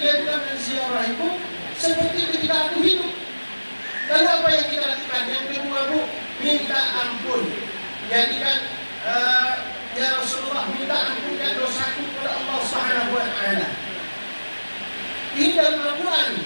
telah menziarahiku seperti ketika aku hidup. Lalu apa yang kita lakukan? Yang kedua, Bu, minta ampun. Jadi kan ya Rasulullah, minta ampunkan dosaku kepada Allah Subhanahu wa taala. Ini dalam Al-Quran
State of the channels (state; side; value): inverted; both; correlation -1.00